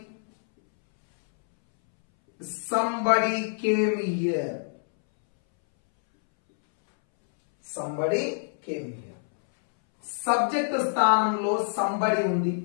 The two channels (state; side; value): silent; right; 61 dB below the other